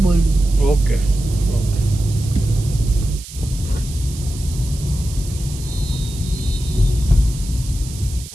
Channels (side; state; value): right; noise; hiss, 15 dB below the sound